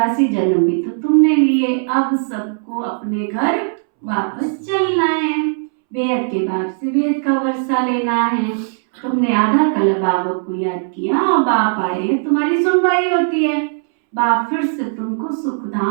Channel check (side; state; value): left; silent; 67 dB below the other